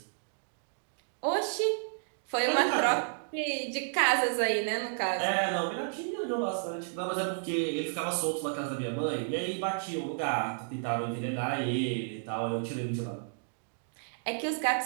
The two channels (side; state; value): left; silent; digital silence